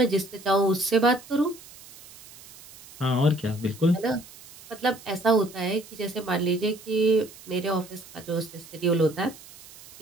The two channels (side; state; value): right; noise; hiss, 20 dB below the sound